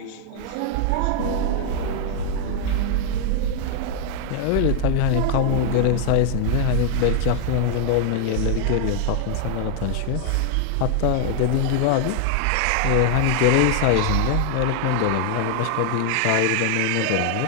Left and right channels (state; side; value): different; both; correlation 0.00